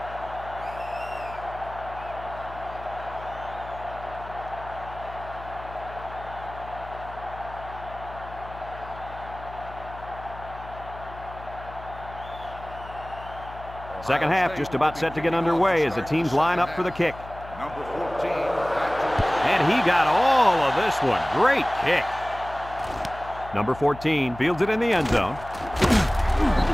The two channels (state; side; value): noise; left; hum, 15 dB below the sound